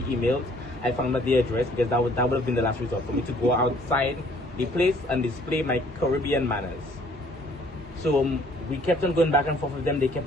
emailed. I found out the address because that would have been the last resort for me to go outside the place and display my Caribbean manners. So we kept on going back and forth with them. They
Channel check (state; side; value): normal; both; correlation 0.59